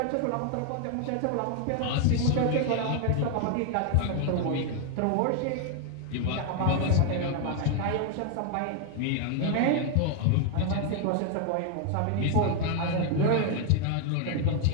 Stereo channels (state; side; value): different; both; correlation 0.01